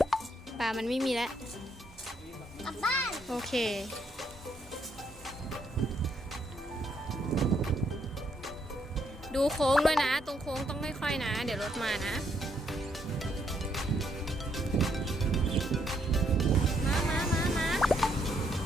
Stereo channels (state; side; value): normal; both; correlation 0.73